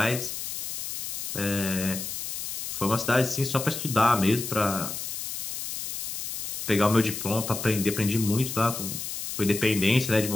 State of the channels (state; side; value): noise; left; hiss, 5 dB below the sound